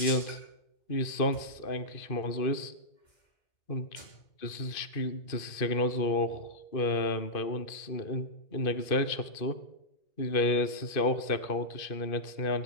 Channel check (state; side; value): late; right; 2.5 ms